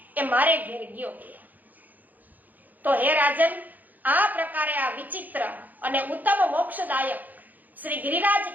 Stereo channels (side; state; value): left; late; 0.083 ms